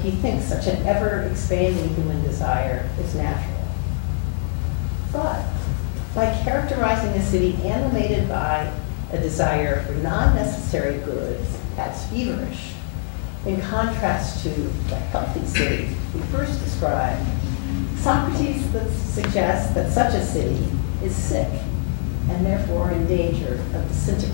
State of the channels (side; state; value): right; silent; digital silence